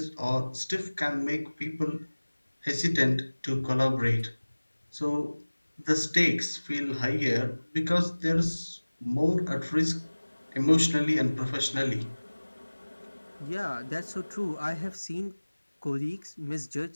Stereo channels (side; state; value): both; inverted; correlation -1.00